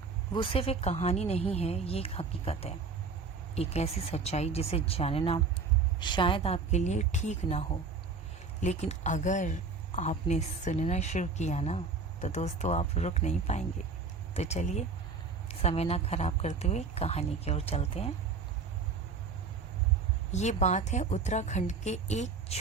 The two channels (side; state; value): left; quieter; 4.6 dB